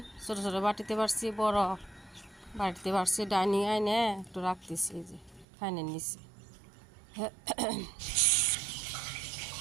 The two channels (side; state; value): left; drops out; at 5.5 s